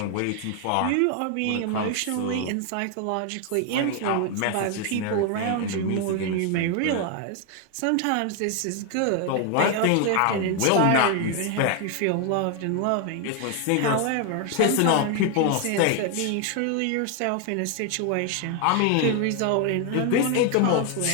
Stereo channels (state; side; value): different; both; correlation 0.00